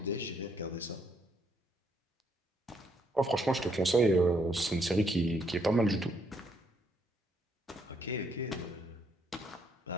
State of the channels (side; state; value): both; normal; correlation 0.72